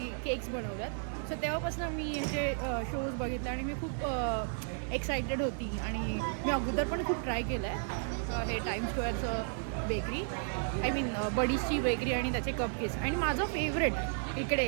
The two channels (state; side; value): silent; left; 55 dB below the other